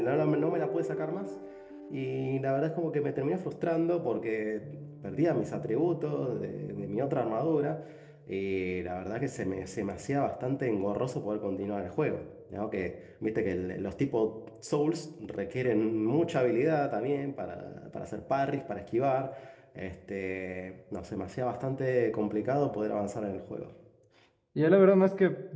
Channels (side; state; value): both; identical; correlation 1.00